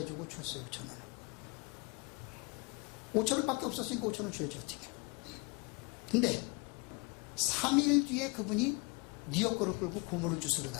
줬어요. 5,000원을 5,000원밖에 없었으니까 5,000원 줘야지 어떻게. 근데 3일 뒤에 그분이 네 역할을 끌고 고무를 주스러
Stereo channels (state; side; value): quieter; right; 29.6 dB